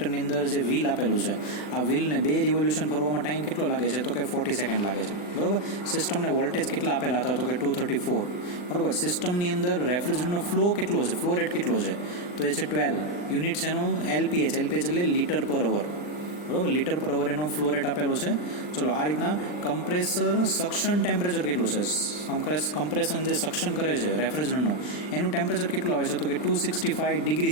અંદર જે વ્હીલ આપેલું છે, આ વ્હીલને 2 રિવોલ્યુશન ફરવામાં ટાઈમ કેટલો લાગે છે? તો કે 40 સેકન્ડ લાગે છે, બરાબર. સિસ્ટમને વોલ્ટેજ કેટલા આપેલા હતા? તો કે 234, બરાબર. સિસ્ટમની અંદર રેફ્રિજરન્ટનો ફ્લો કેટલો છે? ફ્લો રેટ કેટલો છે? તો એ છે 12 યુનિટ્સ. એનો LPH એટલે લીટર પર અવર, બરાબર. લીટર પર અવર એનો ફ્લો રેટ આપેલો છે. ચલો, આ રીતના કમ્પ્રેસર સક્શન ટેમ્પરેચર કેટલું છે? કમ્પ્રેશન જે સક્શન કરે છે રેફ્રિજરન્ટનું, એનું ટેમ્પરેચર કેટલું આવે છે? તો કે 265 ડિગ્રી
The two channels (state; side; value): late; right; 40 ms